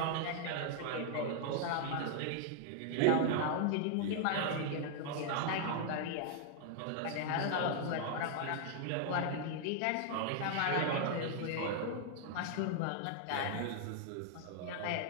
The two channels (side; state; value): both; different; correlation 0.00